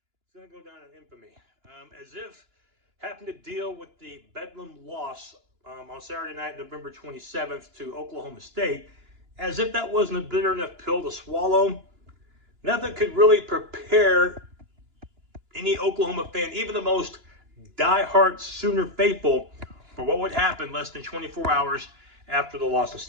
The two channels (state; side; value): late; left; 2.9 ms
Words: is going to go down in infamy. As if having to deal with the Bedlam loss on Saturday night, November 27th to Oklahoma State, as if that wasn't a bitter enough pill to swallow, nothing could really prepare any Oklahoma fan, even the most diehard Sooner faithful, for what would happen less than 24 hours after the loss in